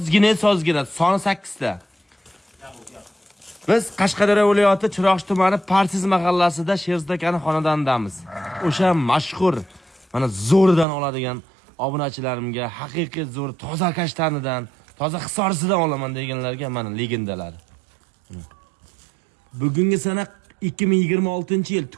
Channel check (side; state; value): left; drops out; at 10.9 s